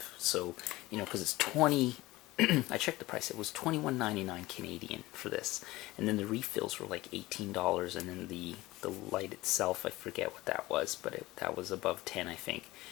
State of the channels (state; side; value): quieter; right; 19.0 dB